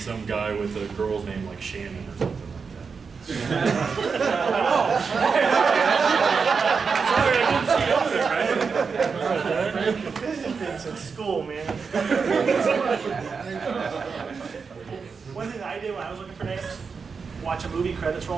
guy with a girl's name like Shannon or something like that. Sorry, I didn't see you over there, right? It's at school, man. One thing that I did when I was looking for names, watch a movie, credits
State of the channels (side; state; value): left; quieter; 5.3 dB